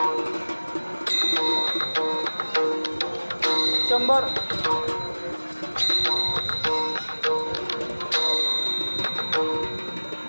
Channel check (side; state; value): both; inverted; correlation -1.00